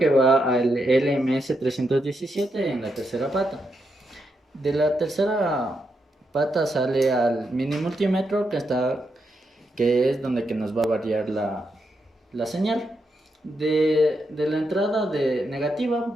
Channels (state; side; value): normal; both; correlation 0.83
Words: va al LMS317 en la tercera pata. De la tercera pata sale al mini multímetro que es donde que nos va a variar la señal. De la entrada negativa